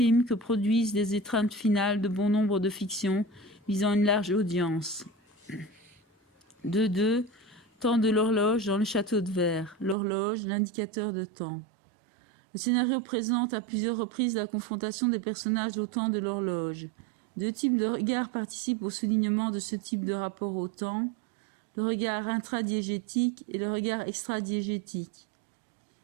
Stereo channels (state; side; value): drops out; left; at 10.0 s